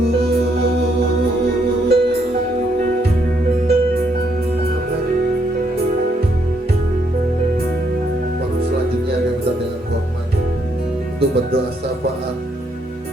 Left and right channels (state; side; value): normal; both; correlation 0.74